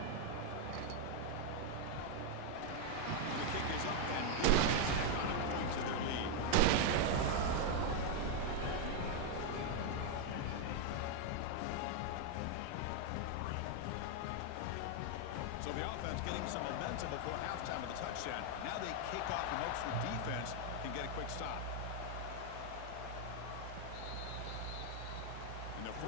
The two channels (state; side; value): different; both; correlation 0.00